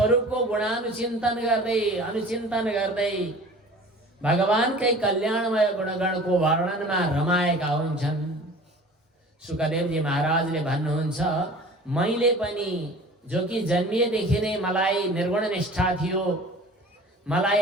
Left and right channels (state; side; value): normal; both; correlation 0.43